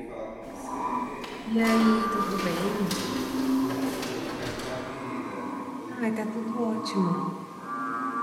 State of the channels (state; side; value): identical; both; correlation 1.00